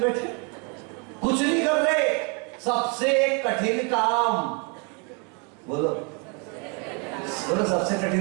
कुछ नहीं कर रहे। सबसे कठिन काम, बोलो बोलो, सबसे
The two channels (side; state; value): left; quieter; 34.6 dB